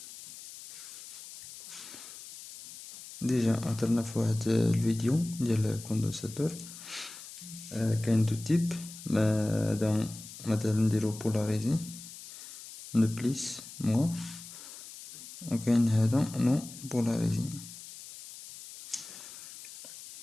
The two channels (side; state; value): left; noise; hiss, 14 dB below the sound